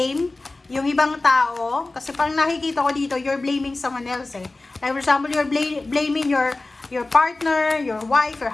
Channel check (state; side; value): quieter; right; 3.1 dB